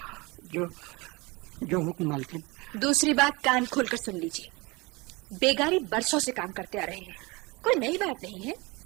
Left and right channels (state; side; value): quieter; left; 25.2 dB